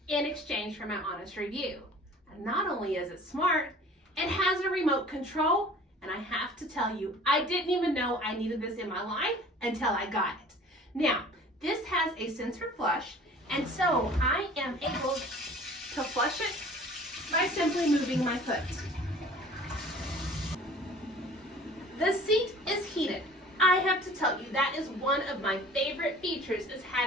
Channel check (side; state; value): both; normal; correlation 0.47